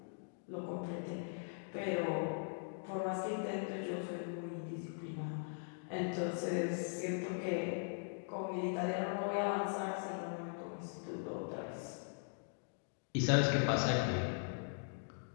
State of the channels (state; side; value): silent; right; digital silence